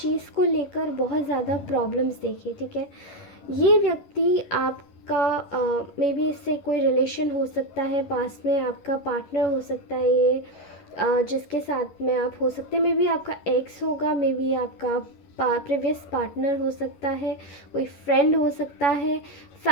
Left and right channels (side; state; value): right; late; 11 ms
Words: को लेकर बहुत ज़्यादा प्रॉब्लम्स देखी, ठीक है। ये व्यक्ति आपका मे बी इससे कोई रिलेशन हो सकता है, पास में आपका पार्टनर हो सकता है ये, जिसके साथ में आप हो सकते हैं। मे बी आपका एक्स होगा, मे बी आपका प्रीवियस पार्टनर हो सकता है, कोई फ्रेंड हो सकता है,